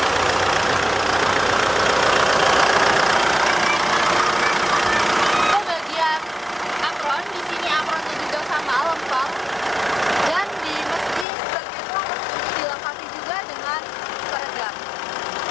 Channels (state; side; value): drops out; right; at 11.2 s